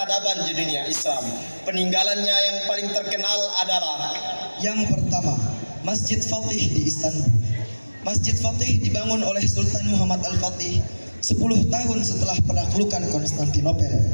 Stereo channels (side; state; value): both; inverted; correlation -1.00